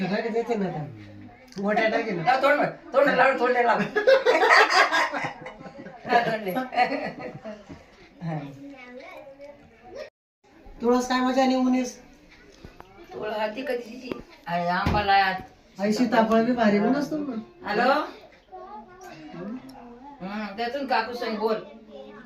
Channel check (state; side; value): identical; both; correlation 1.00